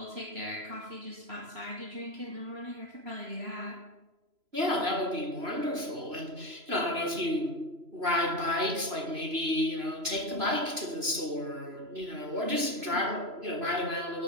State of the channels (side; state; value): left; late; 3.0 ms